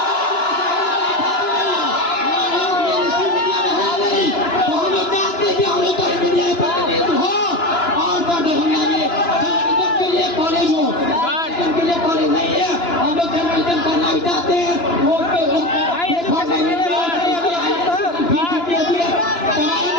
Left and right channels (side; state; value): right; late; 2.9 ms